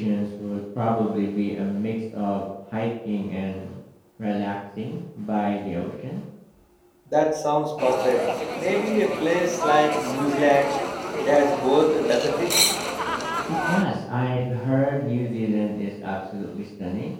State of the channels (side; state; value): both; identical; correlation 1.00